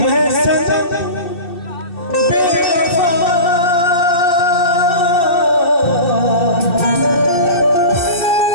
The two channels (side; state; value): right; late; 2.7 ms